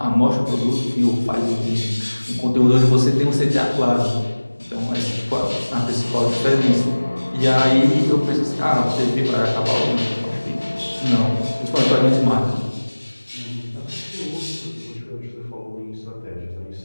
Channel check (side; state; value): both; inverted; correlation -1.00